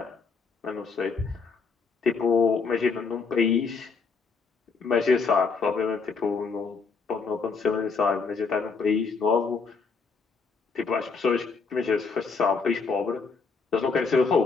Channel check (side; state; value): right; quieter; 4.8 dB